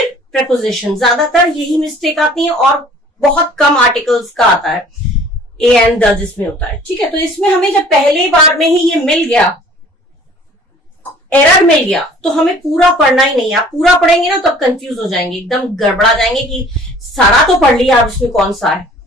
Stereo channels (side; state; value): both; normal; correlation 0.51